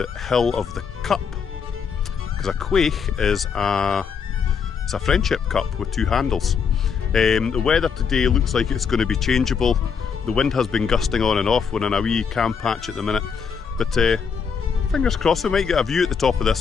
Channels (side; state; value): right; quieter; 6.4 dB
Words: hill of the cup. Because a chuaich is it's a friendship cup with two handles. The weather today looks like it's going to be changeable. The wind has been gusting on and off. We're in a wee camp patch at the minute. But fingers crossed we might get a view at the top of